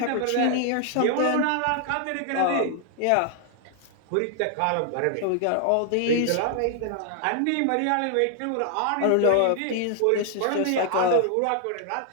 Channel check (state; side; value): different; both; correlation 0.00